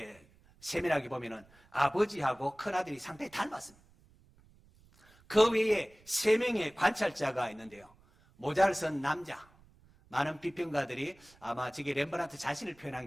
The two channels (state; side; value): noise; right; rumble, 28 dB below the sound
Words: 세밀하게 보면은 아버지하고 큰아들이 상당히 닮았습니다. 그 외에 3명의 관찰자가 있는데요. 모자를 쓴 남자. 많은 비평가들이 아마 저게 렘브란트 자신을 표현한